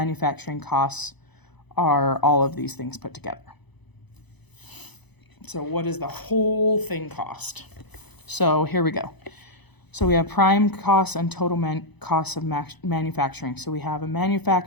costs are all of these things put together. So what does the whole thing cost? So here we go. So we have prime costs and total costs of manufacturing. So we have a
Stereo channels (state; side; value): late; right; 0.99 ms